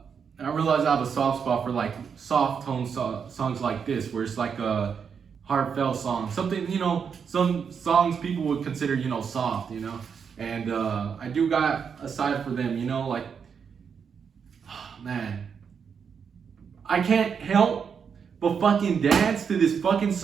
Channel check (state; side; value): quieter; left; 6.7 dB